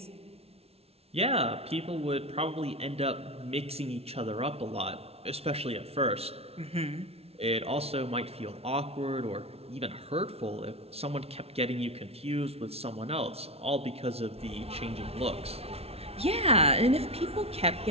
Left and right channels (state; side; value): late; left; 0.30 ms